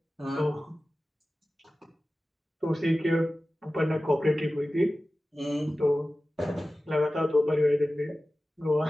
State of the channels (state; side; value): normal; both; correlation 0.95